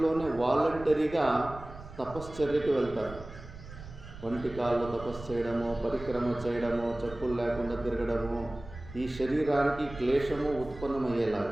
వాలంటరీగా తపశ్చర్యకి వెళ్తారు. వంటి కాళ్ళు తపస్సు చేయడము, పరిక్రమ చేయడము, చెప్పులు లేకుండా తిరగడము, ఈ శరీరానికి క్లేశము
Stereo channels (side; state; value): right; noise; rumble, 15 dB below the sound